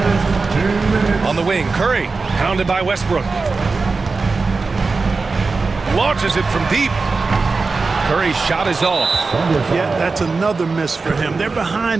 On the wing, Curry, pounded by Westbrook. Launches it from deep. Curry's shot is off. Yeah, that's another miss for him. They're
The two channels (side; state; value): left; quieter; 4.1 dB